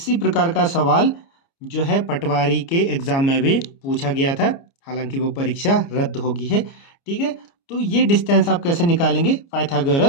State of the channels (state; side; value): late; right; 29 ms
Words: प्रकार का सवाल जो है पटवारी के एग्जाम में भी पूछा गया था, हालांकि वो परीक्षा रद्द होगी है, ठीक है। तो ये डिस्टेंस आप कैसे निकालेंगे?